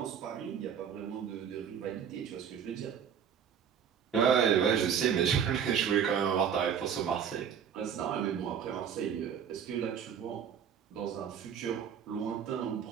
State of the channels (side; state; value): left; quieter; 8.0 dB